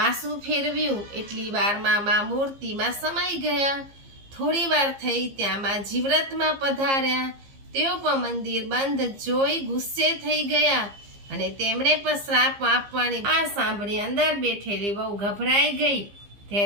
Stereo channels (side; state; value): left; late; 15 ms